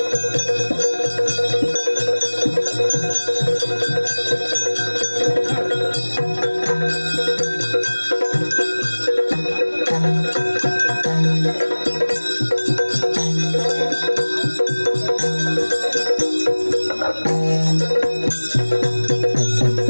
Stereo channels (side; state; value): both; inverted; correlation -1.00